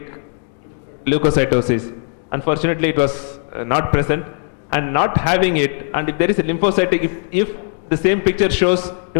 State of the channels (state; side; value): silent; right; 56 dB below the other